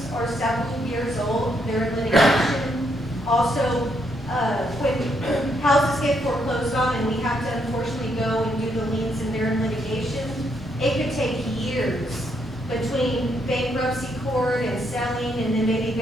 are several years old. They're in litigation. Also, when houses get foreclosed on and we have to unfortunately go and do the liens and they're in litigation, it could take years between bankruptcy court and selling and then maybe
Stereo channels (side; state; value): both; normal; correlation 0.76